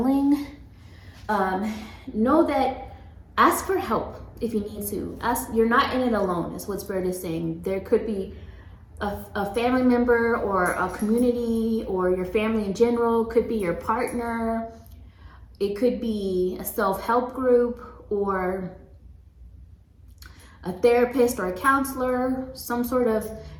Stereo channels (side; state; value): both; identical; correlation 1.00